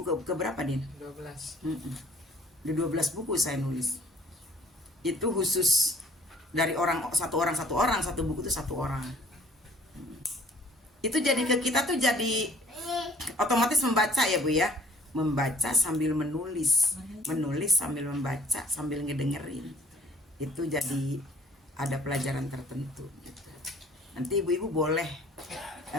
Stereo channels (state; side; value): normal; both; correlation 0.55